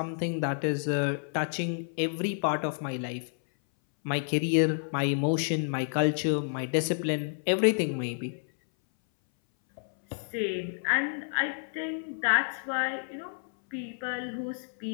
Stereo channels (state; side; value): silent; right; 58 dB below the other